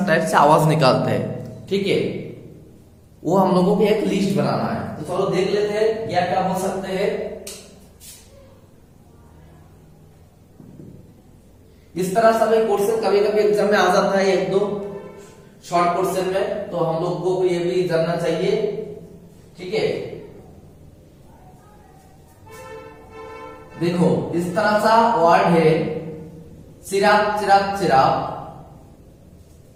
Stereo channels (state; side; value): identical; both; correlation 1.00